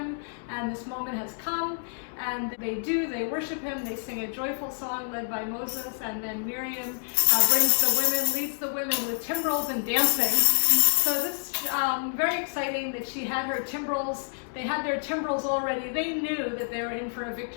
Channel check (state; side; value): silent; right; digital silence